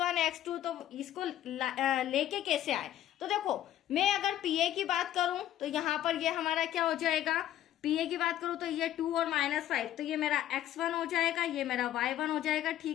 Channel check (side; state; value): right; quieter; 12.3 dB